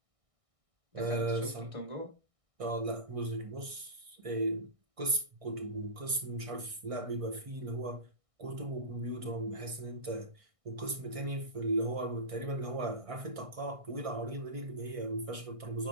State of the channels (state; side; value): late; left; 1.6 ms